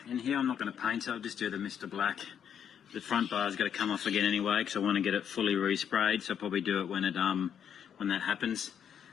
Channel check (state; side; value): quieter; right; 8.5 dB